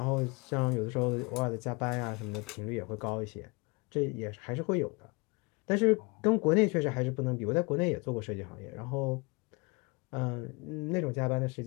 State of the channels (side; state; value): right; quieter; 28.4 dB